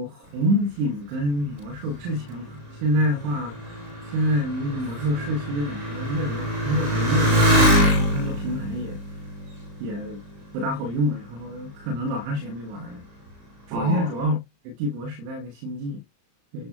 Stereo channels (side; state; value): left; late; 35 ms